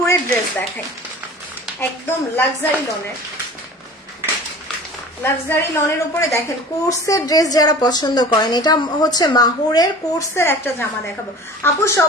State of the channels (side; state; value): both; normal; correlation 0.41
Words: ড্রেস দেখাই, একদম লাক্সারি লনের, লাক্সারি লনের উপরে দেখেন কোর্সের ড্রেস যারা পছন্দ করেন, এটা হচ্ছে মাহুরের কোর্সের একটা জামা দেখাবো। আপু